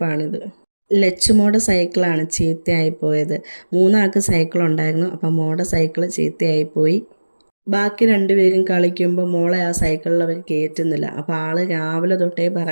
ലച്ചുമോടെ സൈക്കിളാണ് ചീത്തയായി പോയത്. മൂന്നാൾക്ക് സൈക്കിൾ ഉണ്ടായിരുന്നു. അപ്പം മോടെ സൈക്കിൾ ചീത്തയായിപ്പോയി. ബാക്കി രണ്ടുപേരും കളിക്കുമ്പോൾ മോളെ ആ സൈക്കിളിൽ അവർ കയറ്റുന്നില്ല. അപ്പോൾ ആൾ രാവിലെ തൊട്ടേ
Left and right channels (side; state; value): both; inverted; correlation -1.00